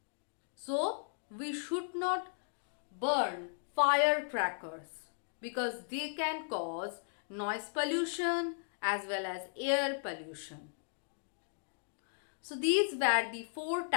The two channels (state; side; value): silent; right; digital silence